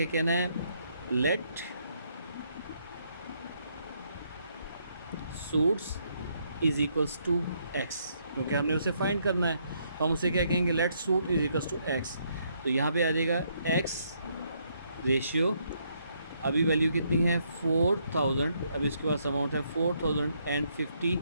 कहना है? Let suits is equals to x, क्योंकि हमने उसे फाइंड करना है. तो हम उसे क्या कहेंगे? Let suit is equals to x. तो यहाँ पे आ जाएगा एक्स रेशियो, अभी वैल्यू कितनी है? 4,000. अभी इसके पास अमाउंट है 4,050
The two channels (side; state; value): both; inverted; correlation -0.73